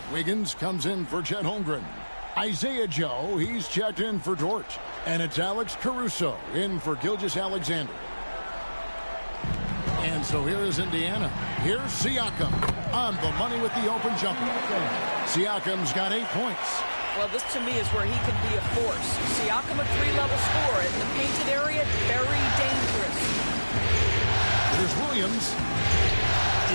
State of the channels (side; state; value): both; inverted; correlation -1.00